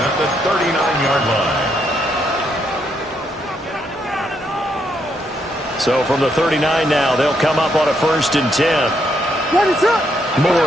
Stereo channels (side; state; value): both; normal; correlation 0.76